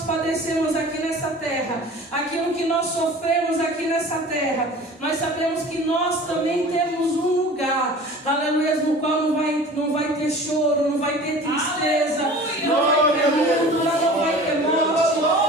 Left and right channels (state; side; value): normal; both; correlation 0.42